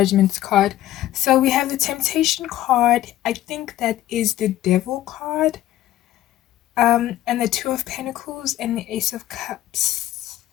card. So we have the Temptation card. I think that is the Devil card. And the 2 of Pentacles and the Ace of Cups.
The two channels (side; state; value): right; quieter; 13.9 dB